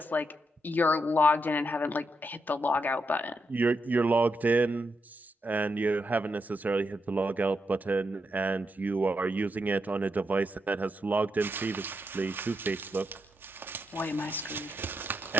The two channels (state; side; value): normal; both; correlation 0.82